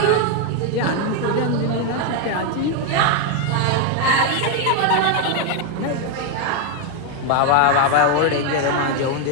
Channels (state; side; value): different; both; correlation 0.01